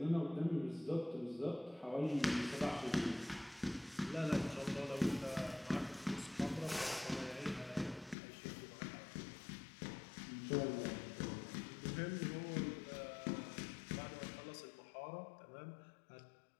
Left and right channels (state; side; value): drops out; right; at 8.2 s